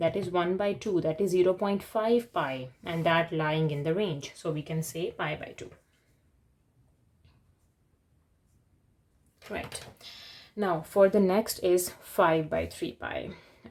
is 1 by 2, that is 0.5 pi, and that lying in the range. So we can say pi by 2. Right. Now for the next is 5 by 3 pi.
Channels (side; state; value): both; identical; correlation 1.00